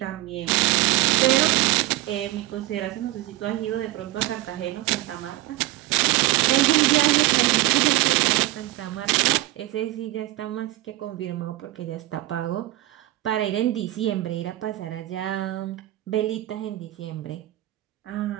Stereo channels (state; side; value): quieter; left; 16.4 dB